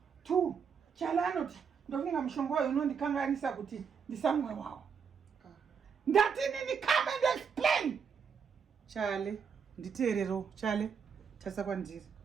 2. Chale anoti ndofunga mushonga wayo unondikanganisa kuti ndisamwe wawo. Ndati nini come and explain. Chale, nditeerero. Chale, tasa kwandiri.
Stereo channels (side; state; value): left; quieter; 6.5 dB